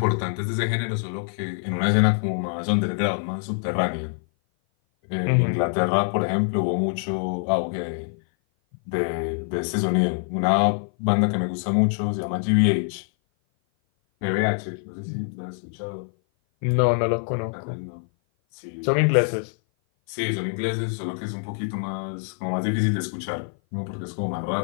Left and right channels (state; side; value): silent; right; 57 dB below the other